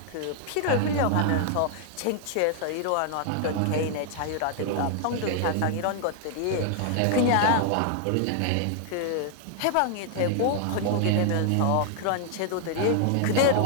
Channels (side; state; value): both; different; correlation 0.00